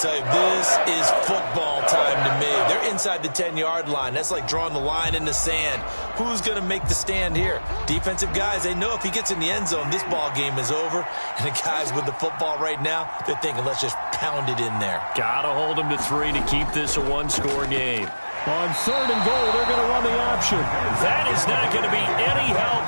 tell you, this is football time to me. They're inside the 10-yard line. That's like drawing the line in the sand. Who's going to make the stand here? Defensive guys, they know if he gets in the end zone, this ball game is over. And the guys with the football right now, they're thinking, let's just pound it in there. Got to hold him to 3 to keep this a one-score game. On third and goal, they're going to run the option. That is not going to be any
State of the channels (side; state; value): both; inverted; correlation -1.00